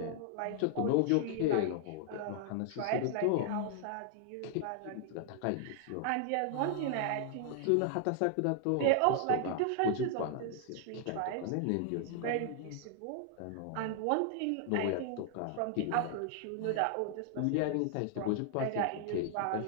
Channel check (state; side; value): different; both; correlation 0.00